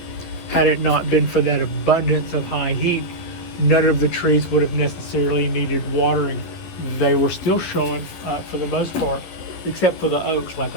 abundance of high heat, none of the trees would have necessarily needed watering. They were still showing, for the most part, except for the oaks, like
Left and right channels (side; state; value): right; late; 11 ms